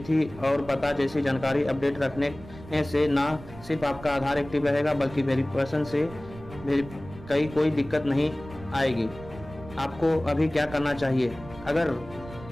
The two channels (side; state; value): right; noise; rumble, 16 dB below the sound